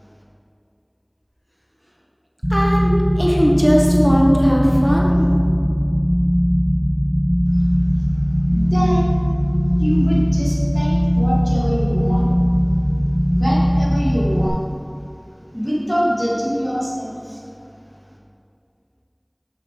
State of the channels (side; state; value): both; identical; correlation 1.00